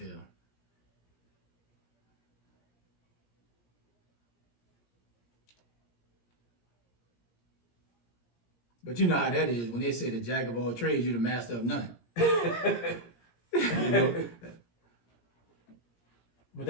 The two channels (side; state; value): right; late; 17 ms